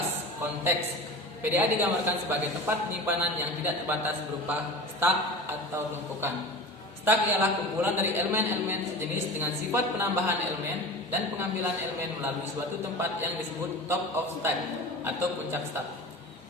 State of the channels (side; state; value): both; normal; correlation 0.33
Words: konteks. PDA digambarkan sebagai tempat penyimpanan yang tidak terbatas berupa stack atau tumpukan. Stack ialah kumpulan dari elemen-elemen sejenis dengan sifat penambahan elemen dan pengambilan elemen melalui suatu tempat yang disebut top of stack atau puncak stack.